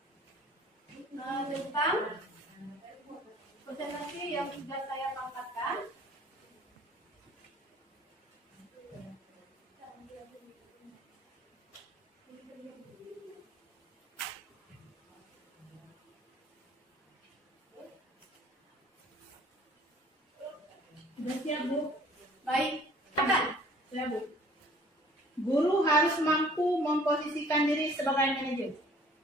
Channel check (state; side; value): normal; both; correlation 0.53